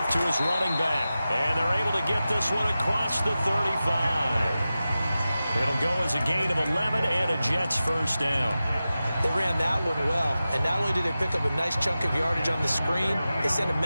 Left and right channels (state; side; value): inverted; both; correlation -0.94